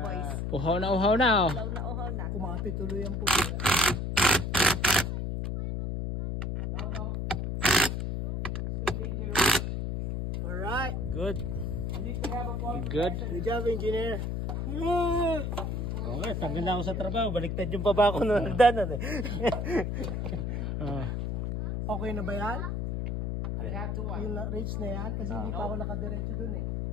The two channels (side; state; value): left; noise; hum, 2 dB below the sound